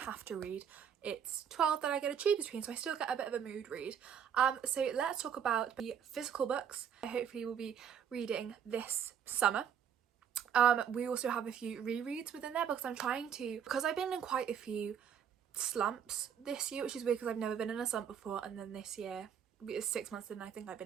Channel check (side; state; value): left; quieter; 8.2 dB